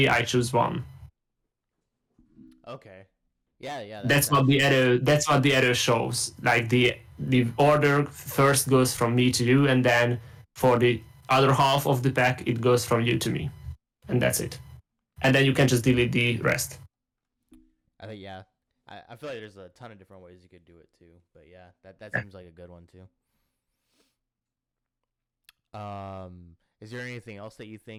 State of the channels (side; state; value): both; identical; correlation 1.00